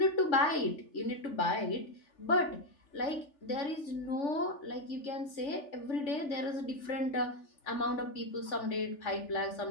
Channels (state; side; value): late; right; 3.4 ms